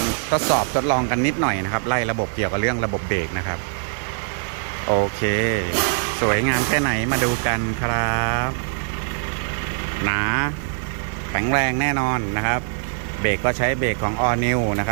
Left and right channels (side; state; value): left; silent; digital silence